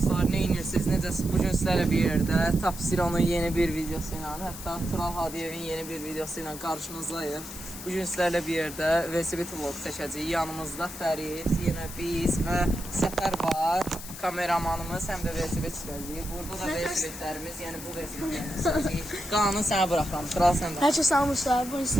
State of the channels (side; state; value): left; noise; hiss, 12 dB below the sound